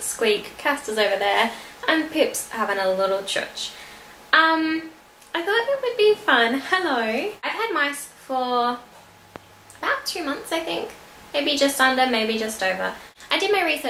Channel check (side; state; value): both; identical; correlation 1.00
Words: Casta's over there, and Pip's having a little church. I thought it would be fun. Hello. I've had mice for about 2 months, I think. Maybe just under, maybe just over. I did my